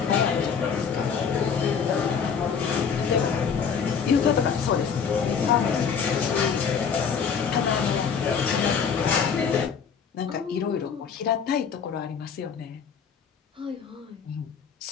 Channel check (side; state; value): right; quieter; 6.6 dB